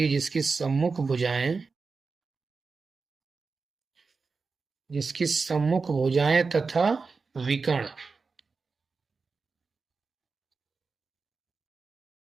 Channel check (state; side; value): quieter; left; 4.5 dB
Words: जिसकी सम्मुख भुजाएं तथा विकर्ण,